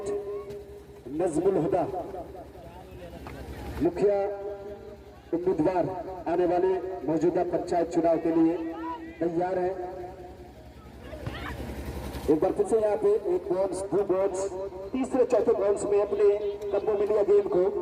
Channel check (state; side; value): identical; both; correlation 1.00